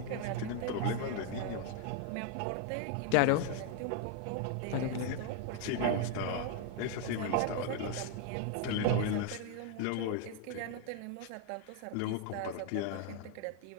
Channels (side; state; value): both; different; correlation 0.01